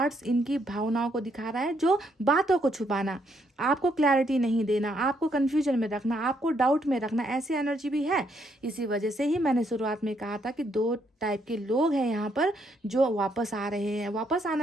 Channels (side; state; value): both; normal; correlation 0.73